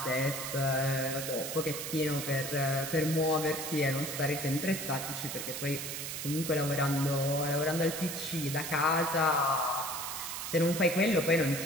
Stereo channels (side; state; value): right; noise; hiss, 5 dB below the sound